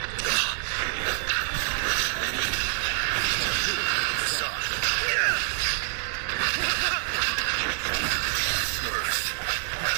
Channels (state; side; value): silent; left; digital silence